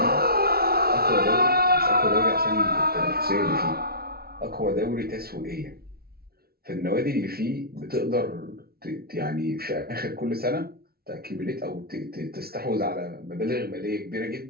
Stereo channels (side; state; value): left; late; 0.44 ms